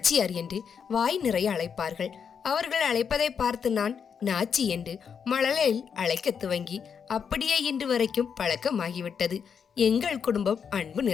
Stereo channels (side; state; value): right; quieter; 6.9 dB